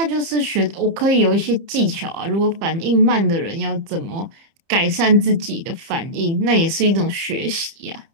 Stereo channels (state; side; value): late; left; 30 ms